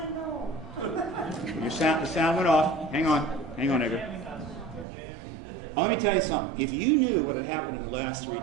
The sound went off. Hang on, Edgar. Let me tell you something. If you knew what had happened in the last 3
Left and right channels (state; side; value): drops out; left; at 4.9 s